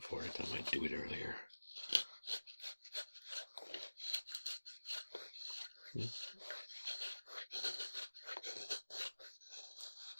it, I might do it earlier.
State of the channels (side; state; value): both; inverted; correlation -1.00